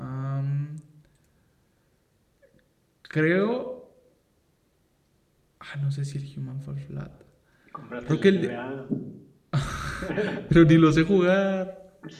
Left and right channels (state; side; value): identical; both; correlation 1.00